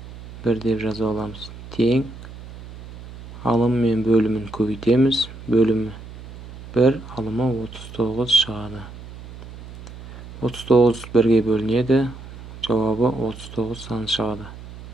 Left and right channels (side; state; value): right; noise; hum, 15 dB below the sound